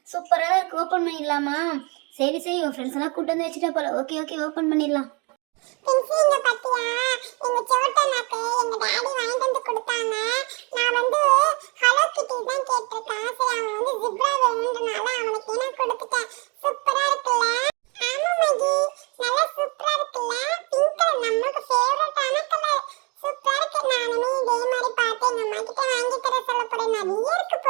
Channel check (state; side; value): quieter; left; 30.7 dB